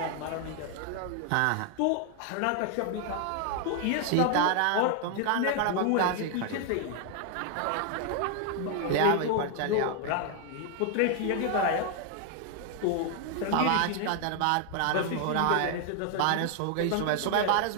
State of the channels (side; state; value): both; different; correlation 0.00